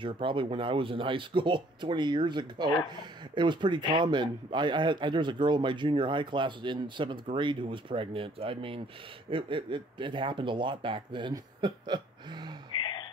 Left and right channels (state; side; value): normal; both; correlation 0.60